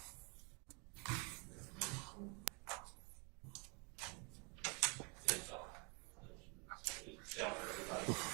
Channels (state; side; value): quieter; left; 32.4 dB